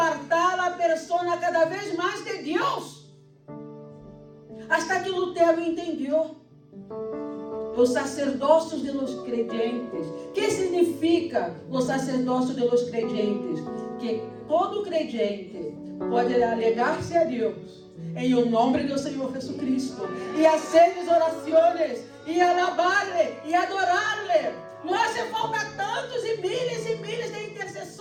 a pessoa cada vez mais de Deus. Hasta que Lutero entendeu os sacerdócios de los creyentes. O que significa os sacerdócios de los creyentes? Que todo creyente pode alegar-se a Deus em o nome do Senhor Jesus Cristo e fazer orações e alabar-lhe e adorá-lhe. Não hace falta tantos e milhares de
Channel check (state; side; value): identical; both; correlation 1.00